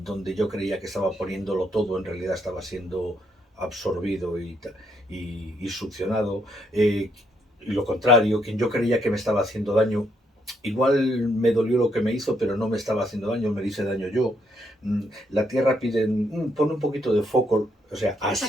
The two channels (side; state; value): both; normal; correlation 0.74